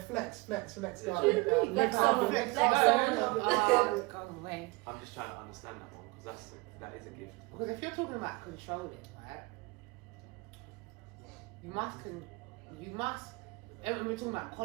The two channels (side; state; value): left; quieter; 25.3 dB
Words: Flex Guys. on, Flex flex on. Come away. I'm just trying to understand that one because that is a gift. Because if you're talking about controlling, right? You must. We're talking about